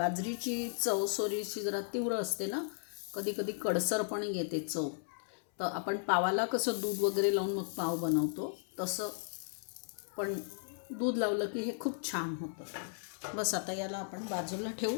चव सोरीची जरा तीव्र असते ना, कधी कधी कडसर पण येते चव. तर आपण पावाला कसं दूध वगैरे लावून मग पाव बनवतो तसं पण दूध लावलं की हे खूप छान होतं. बस आता याला आपण बाजूला ठेवू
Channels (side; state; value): right; silent; 54 dB below the other